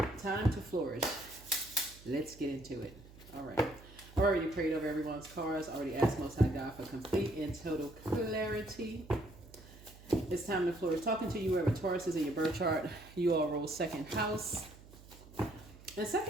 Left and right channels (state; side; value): noise; right; hum, 20 dB below the sound